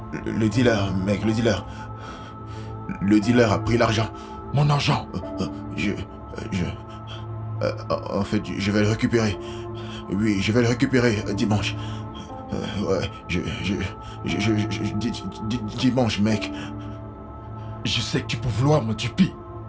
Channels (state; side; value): identical; both; correlation 1.00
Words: dealer, mec, le dealer a pris l'argent. Mon argent. Je, je, en fait, je vais le récupérer. Oui, je vais le récupérer dimanche. Ouais, dimanche, mec. Je sais que tu peux vouloir me tuer.